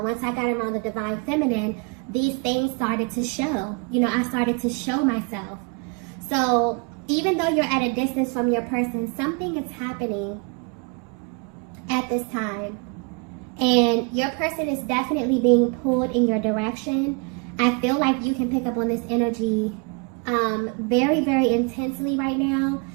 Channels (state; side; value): quieter; left; 33.6 dB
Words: once I got around the divine feminine, these things started to show. I started to show myself. So even though you're at a distance from your person, something is happening at this time. And your person is definitely being pulled in your direction. I feel like you can pick up on this energy very, very intensely right now,